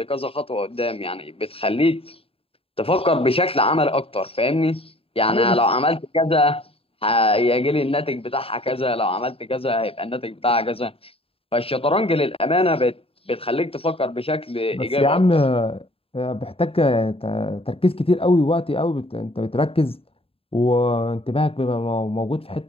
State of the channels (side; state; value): right; late; 0.27 ms